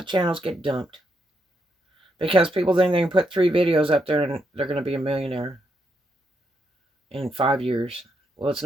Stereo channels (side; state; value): both; normal; correlation 0.79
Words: channels get dumped. Because people think they can put 3 videos up there and they're going to be a millionaire in 5 years. Well, it's